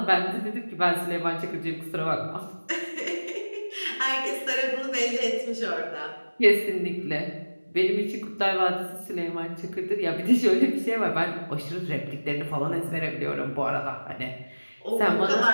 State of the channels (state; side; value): inverted; both; correlation -1.00